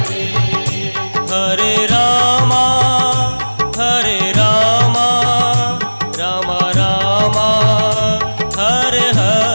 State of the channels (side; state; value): both; inverted; correlation -1.00